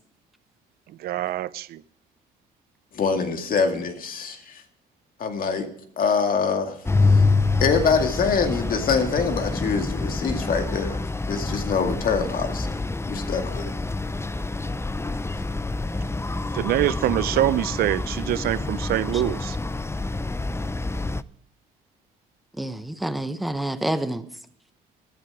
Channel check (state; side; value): normal; both; correlation 0.51